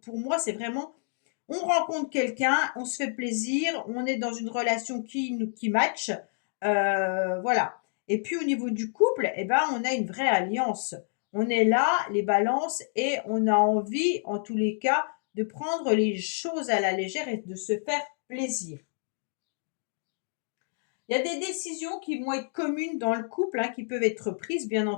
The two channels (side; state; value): right; silent; digital silence